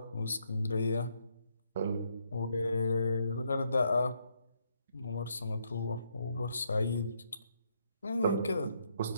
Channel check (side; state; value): both; inverted; correlation -0.75